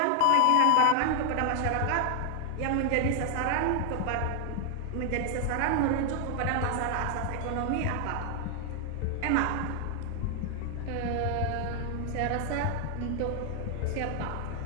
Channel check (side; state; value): both; different; correlation 0.00